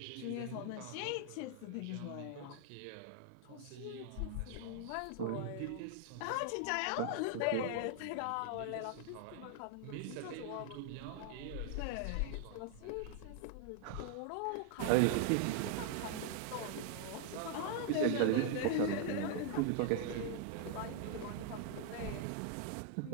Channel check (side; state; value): both; different; correlation -0.01